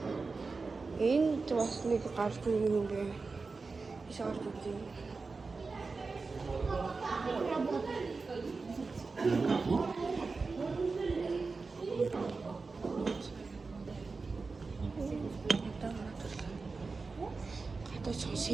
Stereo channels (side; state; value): left; quieter; 4.2 dB